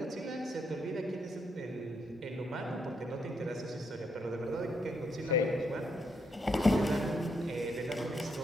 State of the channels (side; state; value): both; normal; correlation 0.77